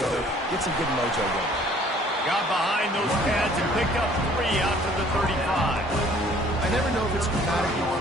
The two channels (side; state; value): both; normal; correlation 0.56